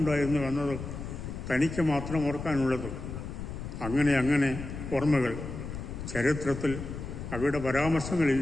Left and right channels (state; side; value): noise; left; rumble, 8 dB below the sound